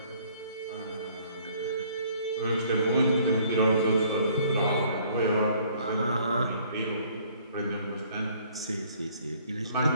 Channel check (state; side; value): inverted; both; correlation -0.59